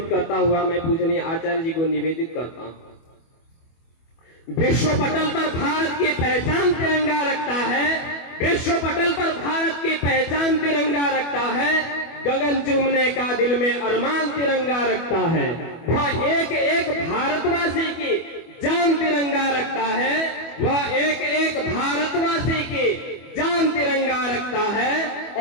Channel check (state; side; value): late; right; 24 ms